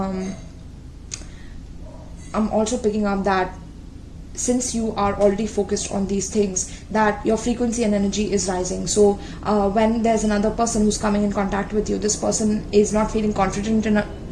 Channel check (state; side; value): identical; both; correlation 1.00